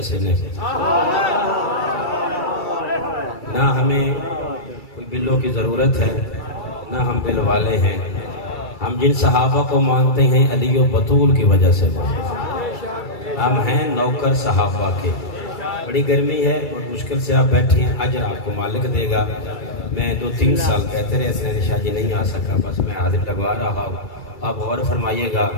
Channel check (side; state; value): right; late; 2.3 ms